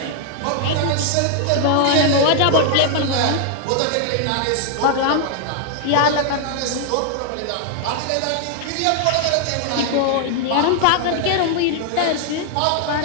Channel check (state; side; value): different; both; correlation 0.00